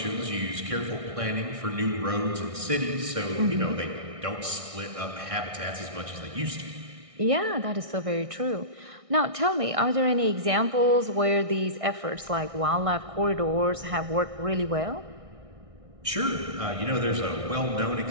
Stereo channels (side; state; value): left; late; 1.6 ms